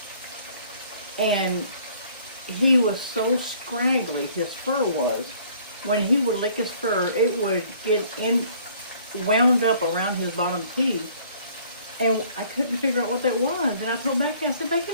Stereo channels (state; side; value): inverted; both; correlation -0.57